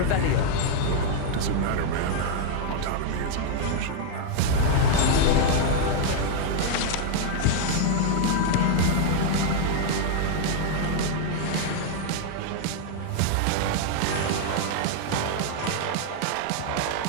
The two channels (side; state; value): both; different; correlation 0.00